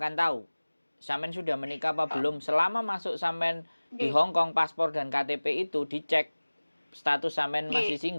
tahu sampean sudah menikah apa belum selama masuk sampean di Hongkong, paspor dan KTP itu dicek status sampean masih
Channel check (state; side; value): inverted; both; correlation -1.00